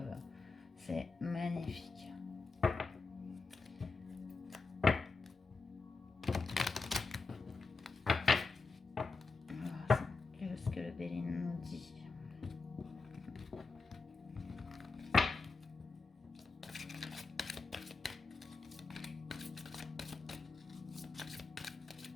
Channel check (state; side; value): quieter; right; 4.1 dB